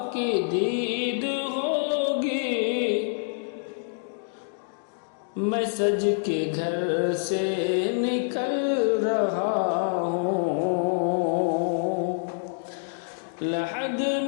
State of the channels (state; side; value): silent; right; digital silence